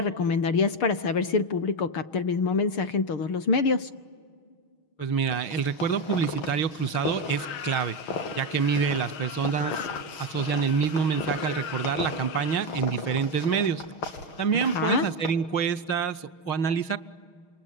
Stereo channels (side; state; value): right; late; 6.4 ms